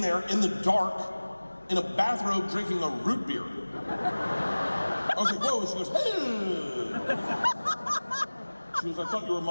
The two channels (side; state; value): both; inverted; correlation -1.00